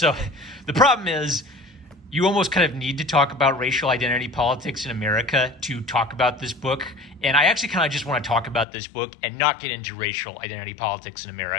the problem is, you almost kind of need to talk about racial identity politics in America to talk about this book. And I actually kind of just want to talk about this book and not get into racial identity politics in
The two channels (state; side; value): drops out; right; at 8.7 s